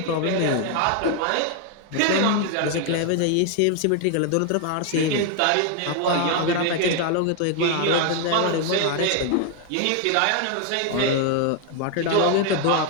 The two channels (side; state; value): both; different; correlation 0.01